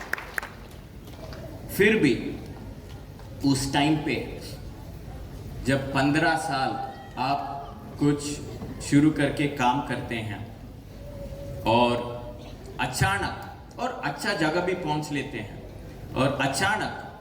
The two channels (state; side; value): identical; both; correlation 1.00